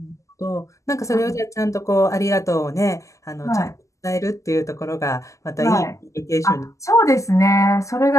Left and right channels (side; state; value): right; late; 0.16 ms